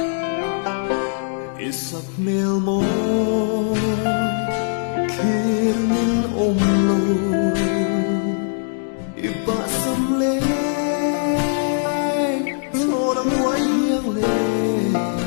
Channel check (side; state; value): right; silent; digital silence